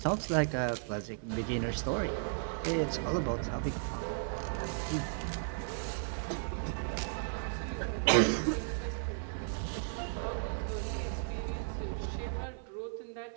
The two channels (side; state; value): left; silent; 54 dB below the other